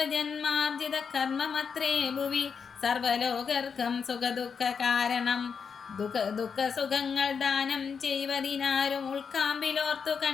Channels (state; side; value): quieter; right; 6.1 dB